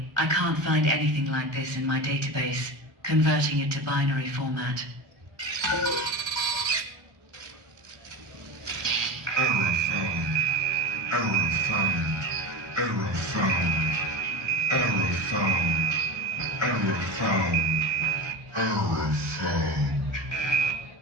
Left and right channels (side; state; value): left; late; 1.3 ms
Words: I can't find anything like this in my database. Converting it to binary format. Error found. Error found. Error found. Error found. Error found. Error found.